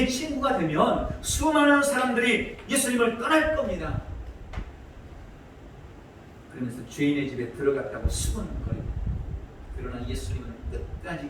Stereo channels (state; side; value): identical; both; correlation 1.00